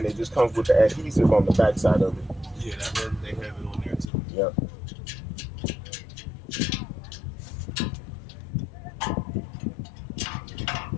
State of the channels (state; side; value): drops out; right; at 4.1 s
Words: it just comes with the adhesive on the back side of it. Yeah, they have it on there too. Yep.